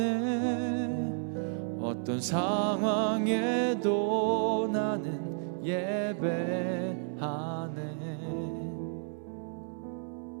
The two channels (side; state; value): left; silent; digital silence